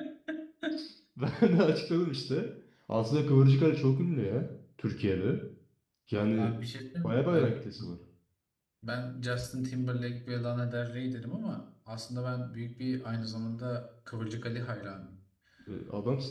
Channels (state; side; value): identical; both; correlation 1.00